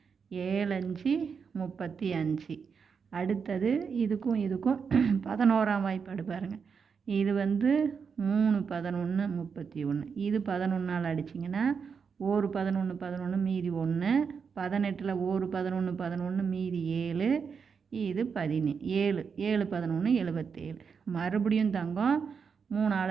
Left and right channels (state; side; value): quieter; left; 6.1 dB